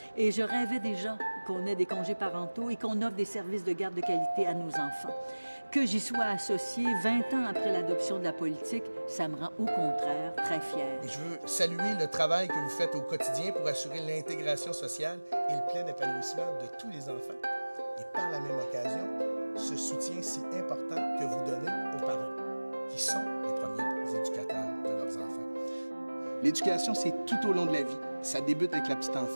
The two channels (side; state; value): both; inverted; correlation -1.00